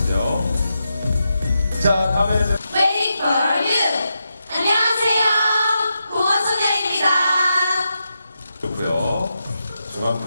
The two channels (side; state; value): both; inverted; correlation -0.86